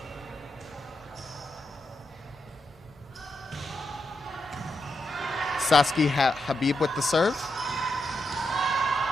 Saskia Habib with the serve.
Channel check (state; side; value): normal; both; correlation 0.85